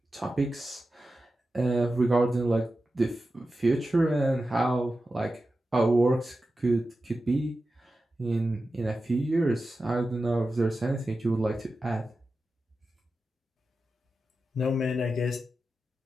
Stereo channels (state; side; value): normal; both; correlation 0.92